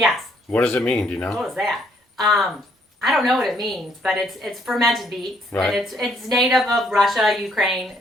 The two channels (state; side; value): normal; both; correlation 0.68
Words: What does it mean? Do you know? What is that? I don't know what it means, but it's fermented beets. Right. And it's native of Russia, Ukraine,